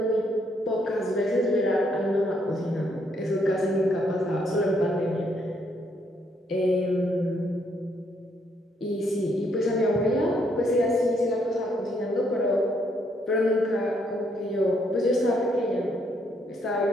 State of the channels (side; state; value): both; normal; correlation 0.72